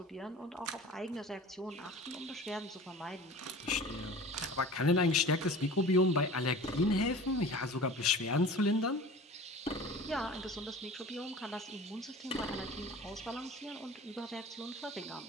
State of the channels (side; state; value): both; normal; correlation 0.40